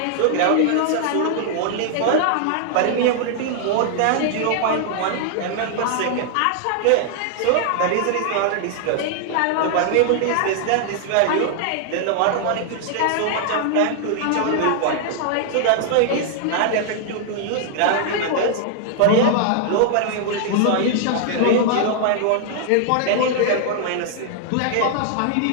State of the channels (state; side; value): different; both; correlation -0.01